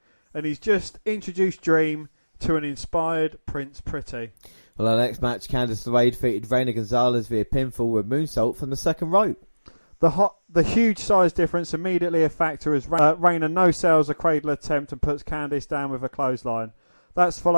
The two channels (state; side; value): inverted; both; correlation -1.00